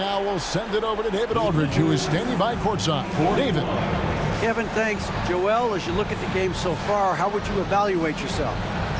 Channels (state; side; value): identical; both; correlation 1.00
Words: we'll send it over to David Aldridge, who is standing by courtside. David. Kevin, thanks. Joel, as you look at the game so far, how would you evaluate yourself?